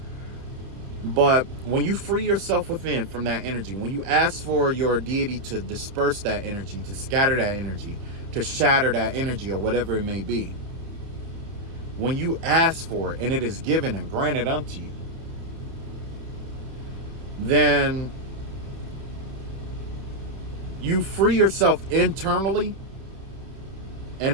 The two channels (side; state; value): left; late; 30 ms